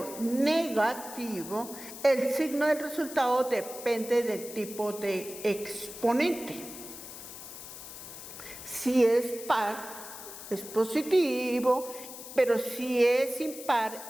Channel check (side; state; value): left; noise; hiss, 12 dB below the sound